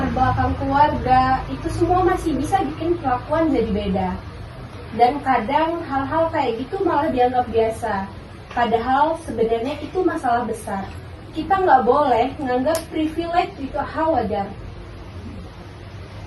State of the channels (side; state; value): both; identical; correlation 1.00